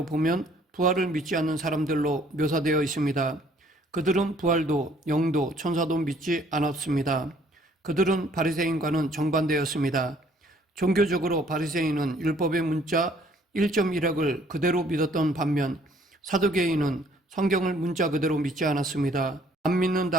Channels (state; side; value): normal; both; correlation 0.61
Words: 보면 부활을 믿지 않는 사람들로 묘사되어 있습니다. 그들은 부활도 영도 천사도 믿지 않았습니다. 그들은 바리새인과는 정반대였습니다. 종교적으로 바리새인은 율법의 문자 1.1핵을 그대로 믿었던 반면 사두개인은 성경을 문자 그대로 믿지 않았습니다. 안